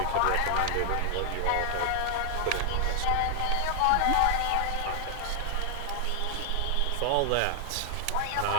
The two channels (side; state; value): both; different; correlation 0.00